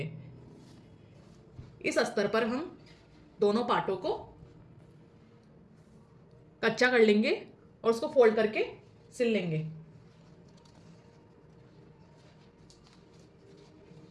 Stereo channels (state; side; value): identical; both; correlation 1.00